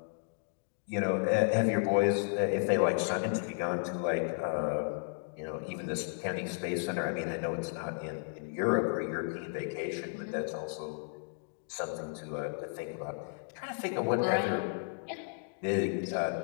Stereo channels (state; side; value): silent; right; digital silence